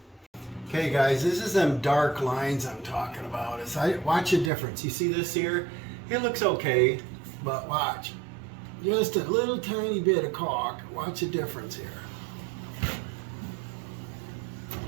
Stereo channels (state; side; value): drops out; left; at 4.5 s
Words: Okay guys, this is them dark lines I'm talking about. Watch the difference. You see this here? It looks okay, but watch. Just a little tiny bit of caulk. Watch the difference here.